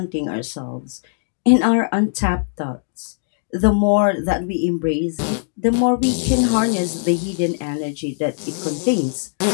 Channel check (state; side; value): silent; right; digital silence